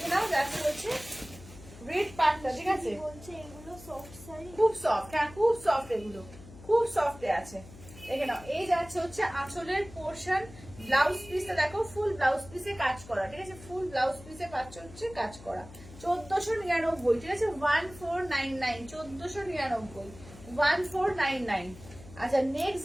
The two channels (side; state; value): left; noise; hum, 18 dB below the sound